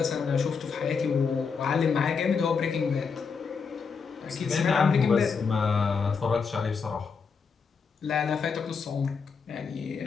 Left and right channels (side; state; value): right; quieter; 5.6 dB